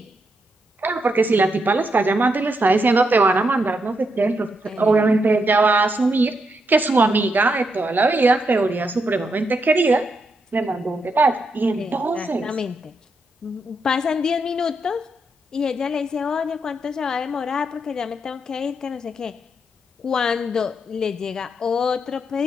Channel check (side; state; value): both; normal; correlation 0.81